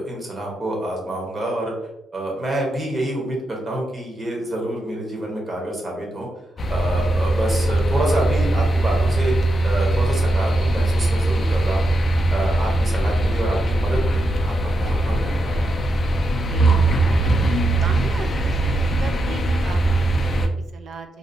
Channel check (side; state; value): both; normal; correlation 0.86